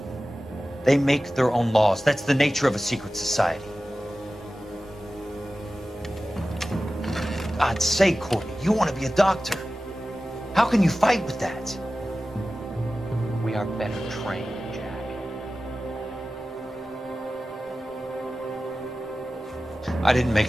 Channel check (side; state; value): both; normal; correlation 0.95